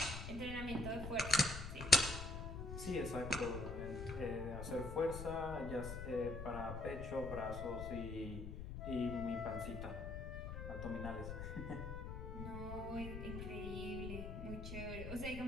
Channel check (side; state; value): left; noise; rumble, 6 dB below the sound